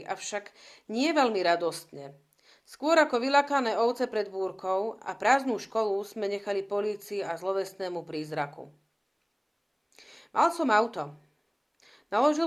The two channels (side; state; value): both; identical; correlation 1.00